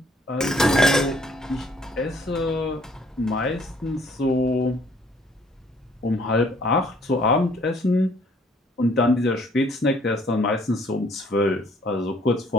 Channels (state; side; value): normal; both; correlation 0.61